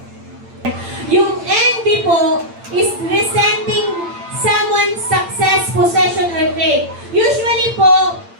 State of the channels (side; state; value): left; late; 8.8 ms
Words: Yung envy po is resenting someone's success, possession, or trait. Usually po,